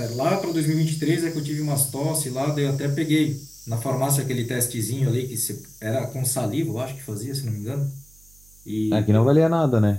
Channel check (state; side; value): noise; right; hum, 27 dB below the sound